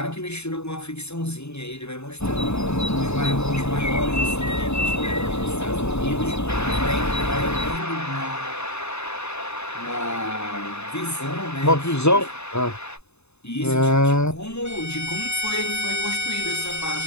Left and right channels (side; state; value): right; late; 0.81 ms